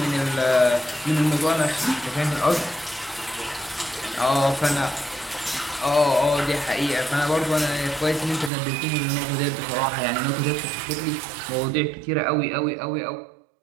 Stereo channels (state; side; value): drops out; left; at 8.5 s